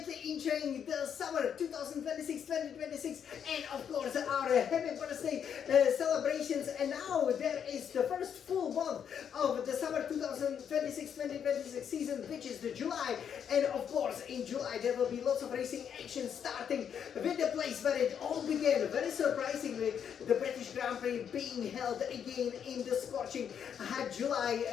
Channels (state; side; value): quieter; right; 8.1 dB